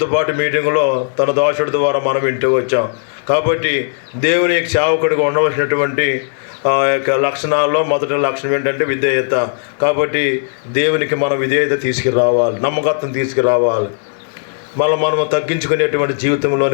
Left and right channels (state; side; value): silent; right; 66 dB below the other